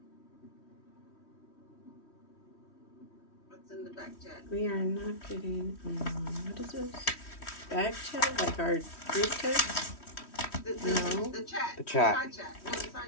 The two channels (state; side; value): late; right; 3.1 ms